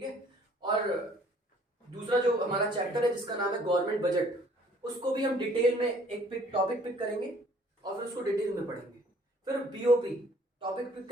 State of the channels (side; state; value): both; normal; correlation 0.58